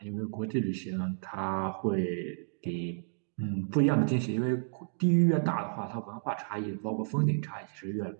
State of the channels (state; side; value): silent; left; digital silence